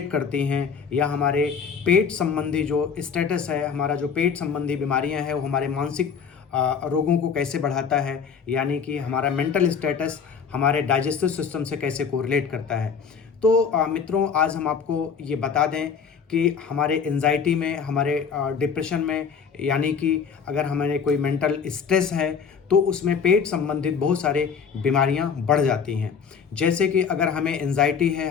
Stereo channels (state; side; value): quieter; right; 6.4 dB